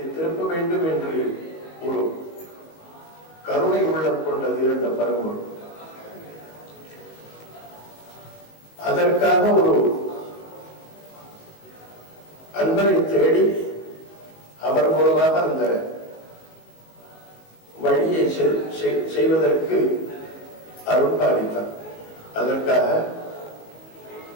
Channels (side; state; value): right; late; 19 ms